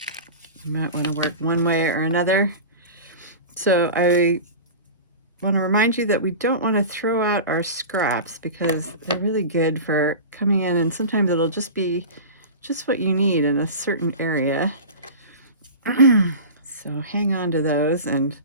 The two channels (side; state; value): both; inverted; correlation -0.32